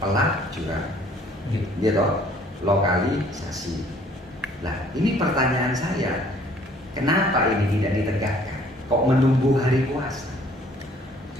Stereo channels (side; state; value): both; normal; correlation 0.58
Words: gitu, lokalisasi. Lah, ini pertanyaan saya, kenapa ini tidak ditegakkan? Kok menunggu hari puasa?